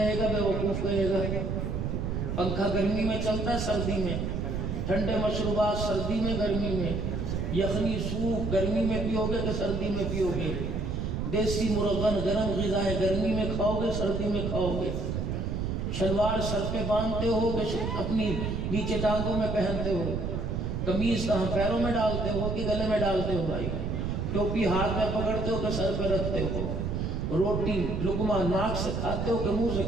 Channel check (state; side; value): noise; right; rumble, 1 dB below the sound